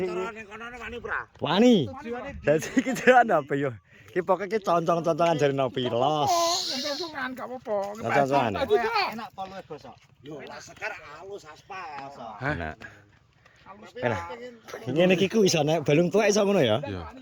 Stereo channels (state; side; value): identical; both; correlation 1.00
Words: wani. Dadi iki jalan apa yo? Ki pokoke ki concong-concongan jare nopi los. Concongan gak apa-apa. Concongan. Enak poluwe bosok. Yo enak sekar halus aspal. Enak. Enak. Ngene iki ku iso nek balung tuwek iso ngono ya? Iya.